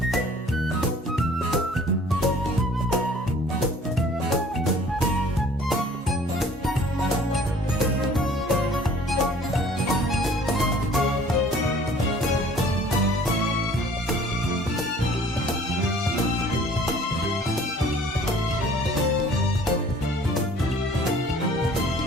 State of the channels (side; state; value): both; normal; correlation 0.52